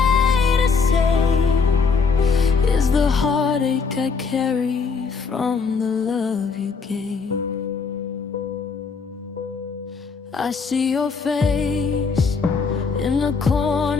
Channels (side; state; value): right; quieter; 5.1 dB